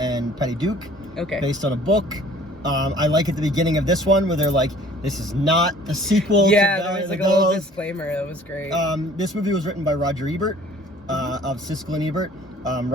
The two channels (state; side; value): normal; both; correlation 0.52